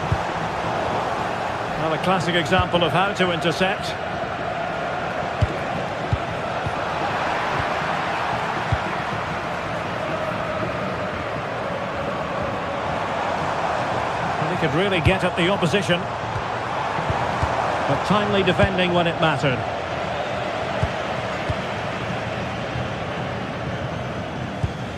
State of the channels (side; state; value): both; identical; correlation 1.00